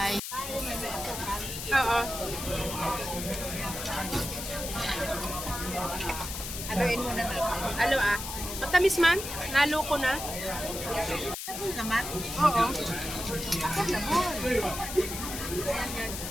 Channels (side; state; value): left; noise; hiss, 7 dB below the sound